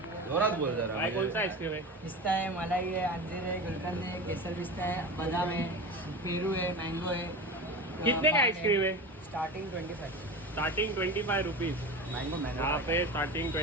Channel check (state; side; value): normal; both; correlation 0.28